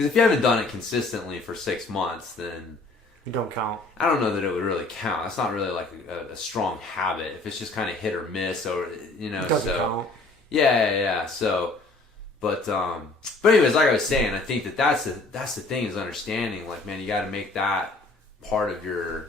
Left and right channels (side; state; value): right; quieter; 3.2 dB